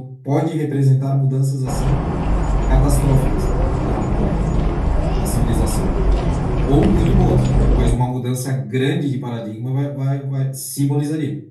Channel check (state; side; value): identical; both; correlation 1.00